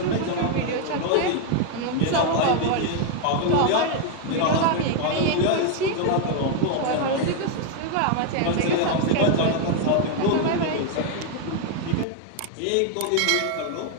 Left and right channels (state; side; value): different; both; correlation 0.00